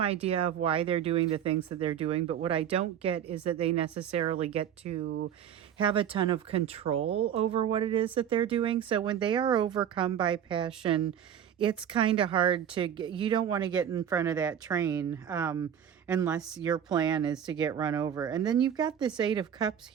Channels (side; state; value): left; quieter; 9.2 dB